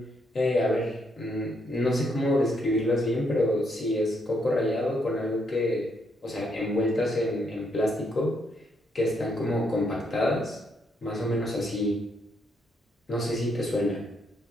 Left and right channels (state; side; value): normal; both; correlation 0.75